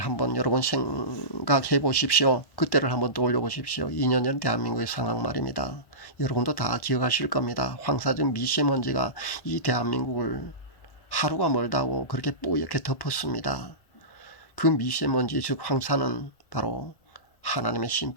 여러분 생각해 보십시오. 그때를 한번 떠올려 보십시오. 2년 전 대한민국의 상황 말입니다. 여러분도 다 기억하실 겁니다. 황사적 미세먼지가 이 대한민국을 하루가 멀다고 그렇게 뿌옇게 덮었습니다. 그 미세먼지 즉 황사는 바로 하나님의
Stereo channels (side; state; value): right; late; 1.1 ms